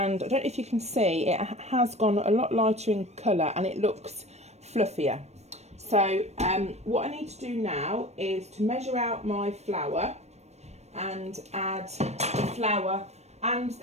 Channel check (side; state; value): left; late; 0.32 ms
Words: I don't know if you can see, it has gone a lot lighter in colour and it looks fluffier. So what I need to do now is to measure out my flour and add the flour and